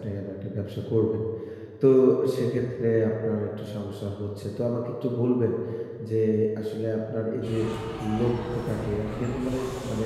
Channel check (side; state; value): both; identical; correlation 1.00